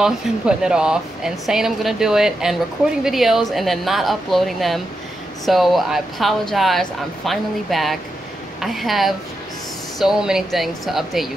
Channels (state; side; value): normal; both; correlation 0.87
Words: and putting it off and saying I'm gonna do it and recording videos and then not uploading them. So I apologize. I'm finally back. I have so many things to update you